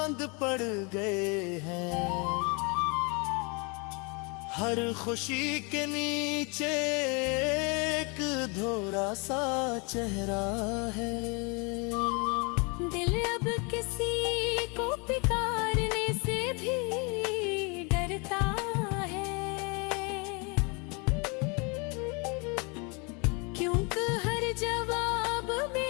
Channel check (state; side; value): quieter; right; 31.6 dB